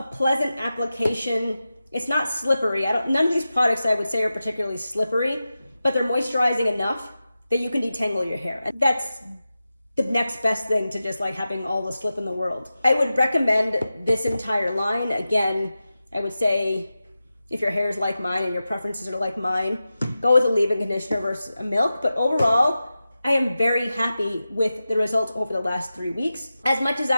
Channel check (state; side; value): inverted; both; correlation -0.93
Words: pleasant application. It's not slippery. None of these products I would say are particularly slippery, but they're moisturizing enough that you can detangle your hair. And that's the next best thing to just like having all the slip in the world. I would recommend this entire line. Again, I would say if your hair is like mine and your preferences are like mine, go with a leave-in conditioner versus a milk. But overall, I am very happy with the results over the last 3 weeks. As much as